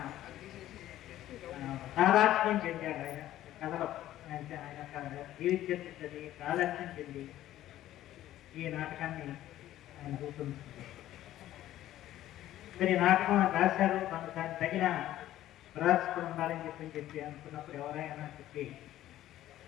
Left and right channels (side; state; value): right; quieter; 13.6 dB